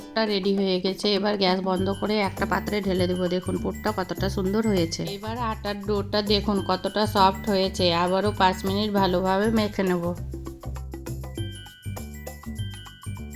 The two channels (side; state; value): both; identical; correlation 1.00